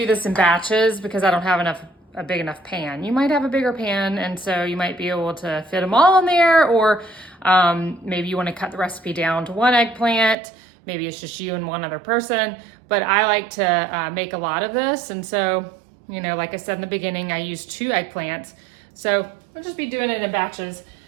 this in batches because I don't have a big enough pan. You might have a bigger pan, and so you might be able to fit them all in there, or maybe you want to cut the recipe down to one eggplant. Maybe it's just you and one other person, but I like to make a lot of this. And so, you know, like I said in the beginning, I use 2 eggplants. So I'll just be doing it in batches.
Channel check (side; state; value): left; drops out; at 10.4 s